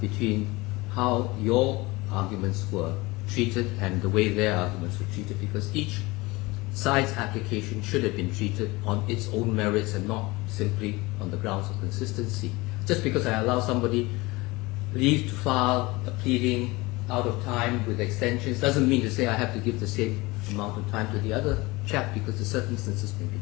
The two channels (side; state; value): right; quieter; 22.5 dB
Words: how your arguments were treated and the way their arguments were treated, because each side's application should have been treated on its own merits and not simply on the grounds of consistency. Just because I allow somebody leave to file a pleading out of time with extensions doesn't mean to say I have to give the same amount of time to the other chap, because the circumstances may be